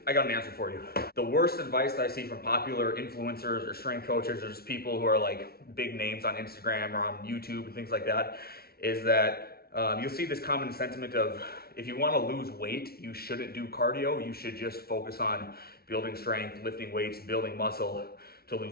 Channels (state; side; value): late; right; 0.44 ms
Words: I got an answer for you. The worst advice that I see from popular influencers or strength coaches or just people who are like big names on Instagram or on YouTube and things like that is that you'll see this common sentiment of if you want to lose weight, you shouldn't do cardio. You should just focus on building strength, lifting weights, building muscle to